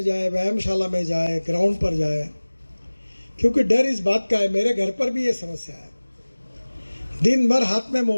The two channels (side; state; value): both; inverted; correlation -1.00